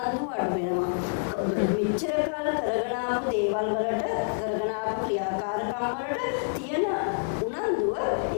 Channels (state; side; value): silent; right; digital silence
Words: අඩු වෙනවා. මෙච්චර කාල කරගෙන ආපු දේවල් වලට කරගෙන ආපු ක්‍රියාකාරකම් වලට තියෙන උනන්දුව